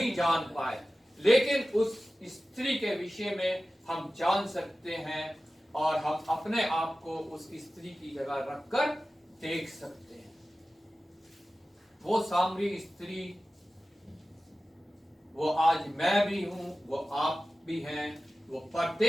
जान पाए, लेकिन उस स्त्री के विषय में हम जान सकते हैं और हम अपने आप को उस स्त्री की जगह रखकर देख सकते हैं। वो सामरी स्त्री, वो आज मैं भी हूं, वो आप भी हैं, वो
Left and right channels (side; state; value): both; normal; correlation 0.95